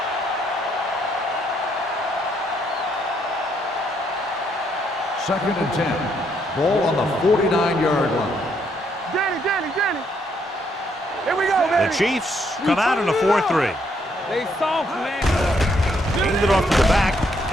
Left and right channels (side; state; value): both; normal; correlation 0.72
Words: Second and 10. Ball on the 49-yard line. Danny. Here we go, baby. The Chiefs come out in a 4-3. They soft, man. Hand it off to the back.